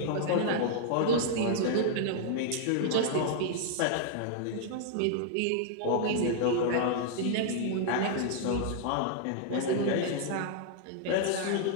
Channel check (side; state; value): both; different; correlation -0.01